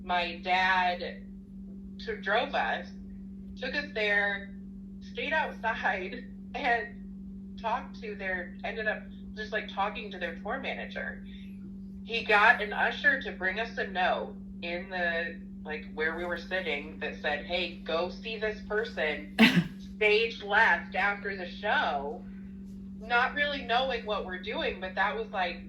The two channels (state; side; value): identical; both; correlation 1.00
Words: My dad drove us, took us there, stayed outside, and ended up just like talking to their tour manager. He got an usher to bring us a note in the, like where we were sitting that said, hey, go see this person, stage left after the show. Not really knowing what we're doing, but that was like